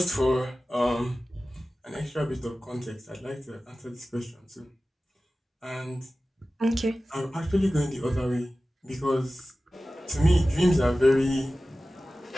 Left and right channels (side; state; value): both; normal; correlation 0.96